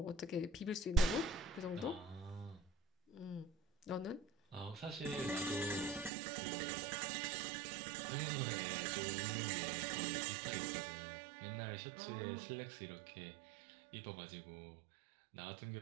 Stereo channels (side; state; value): left; drops out; at 6.1 s